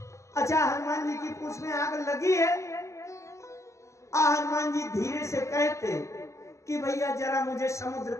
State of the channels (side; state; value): right; late; 0.14 ms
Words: अच्छा, हनुमान जी की पूंछ में आग लगी है, हनुमान जी धीरे से कहते कि भैया जरा मुझे समुद्र